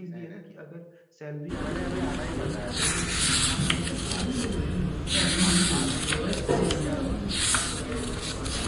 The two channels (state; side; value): identical; both; correlation 1.00